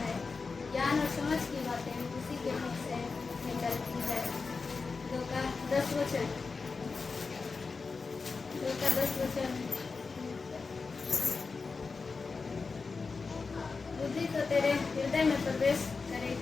ज्ञान और समझ की बातें उसी के मुख से निकलती है। 2 का 10 बुद्धि तो तेरे हृदय में प्रवेश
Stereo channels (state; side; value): quieter; right; 4.5 dB